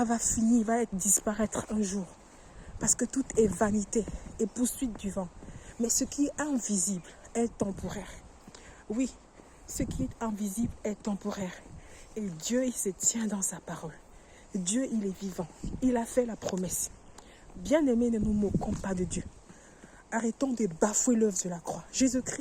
va finir, va disparaître un jour. Parce que tout est vanité et poursuite du vent. Mais ce qui est invisible est temporaire. Oui, ce qui est invisible est temporaire. Et Dieu, il se tient dans sa parole. Dieu, il est vivant. Il a fait la promesse. Bien-aimés, ne nous moquons pas de Dieu. Arrêtons de bafouer l'œuvre de la croix.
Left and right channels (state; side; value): identical; both; correlation 1.00